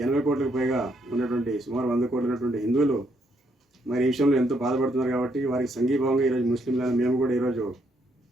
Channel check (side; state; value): both; normal; correlation 0.73